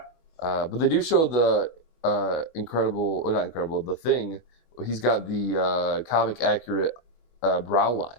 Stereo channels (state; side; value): late; right; 24 ms